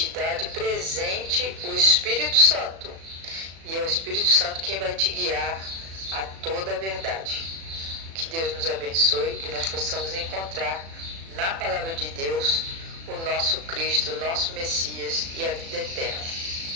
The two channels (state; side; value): late; left; 36 ms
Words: dá de presente o Espírito Santo. E é o Espírito Santo quem vai te guiar a toda a verdade. Que Deus nos abençoe, que nós possamos encontrar na palavra de Deus, o nosso Cristo, o nosso Messias e a vida eterna.